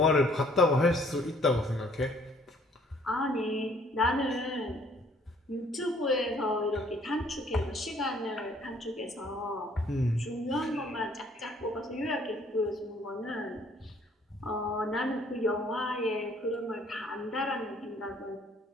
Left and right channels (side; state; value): both; normal; correlation 0.61